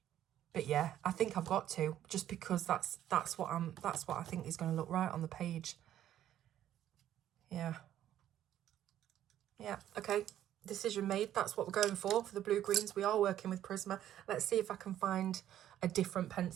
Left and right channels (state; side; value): quieter; left; 11.7 dB